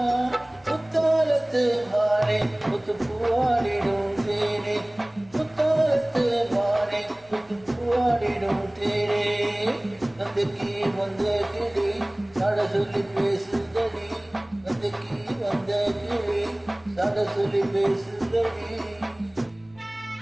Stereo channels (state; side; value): noise; right; hum, 30 dB below the sound